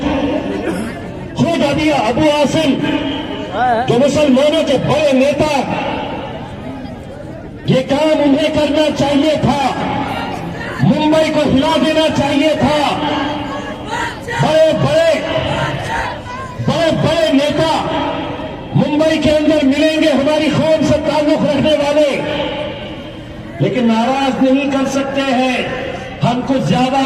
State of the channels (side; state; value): both; identical; correlation 1.00